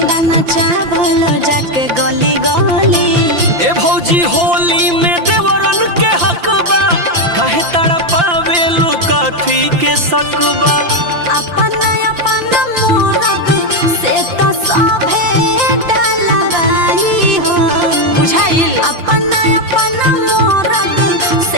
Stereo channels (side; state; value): left; late; 5.8 ms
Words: चावल जाके गली गली। ए भौजी होली में देवरन के हक बा काहे तड़पावे लुकाथी के सकबा अपन अपन मोरग से तो सभे डलवाई हो बुझाइल अपन अपन मोरग